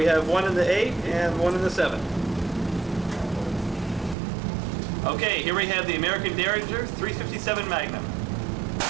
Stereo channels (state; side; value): drops out; left; at 4.2 s